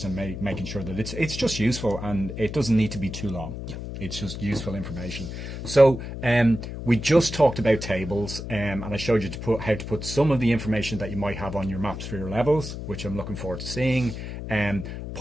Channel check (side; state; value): left; noise; hum, 7 dB below the sound